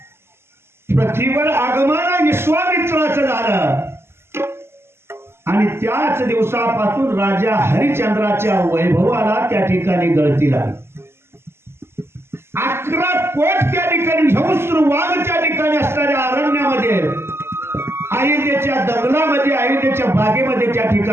पृथ्वीवर आगमन विश्वामित्राचं झालं आणि त्याच दिवसापासून राजा हरिश्चंद्राच्या वैभवाला त्या ठिकाणी गळती लागली. 11 कोट त्या ठिकाणी झंस्र वाघ त्या ठिकाणी असणाऱ्या अरण्यामध्ये, अयोध्येच्या दंगलामध्ये, अयोध्येच्या बागेमध्ये त्या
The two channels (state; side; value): late; left; 0.12 ms